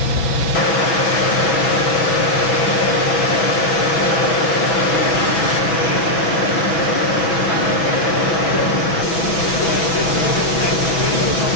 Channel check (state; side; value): late; right; 6.1 ms